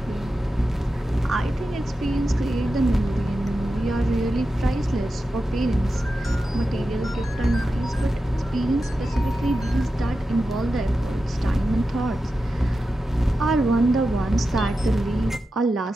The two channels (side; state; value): both; normal; correlation 0.91